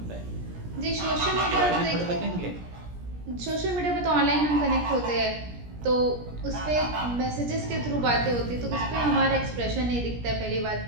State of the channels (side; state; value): left; late; 17 ms